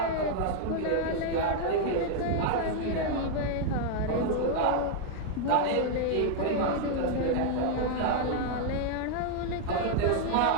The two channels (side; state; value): both; different; correlation 0.00